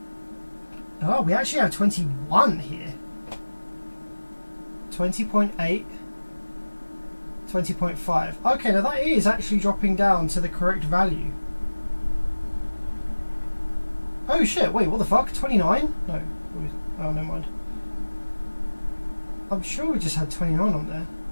Oh, we actually have 21 here. 20.8, 20.5. Okay, now that is actually dropping down to the correct value. Oh shit, wait, what the fuck? 29? No. Oh, never mind. I'm sure we just had 29 on there.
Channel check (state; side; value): inverted; both; correlation -1.00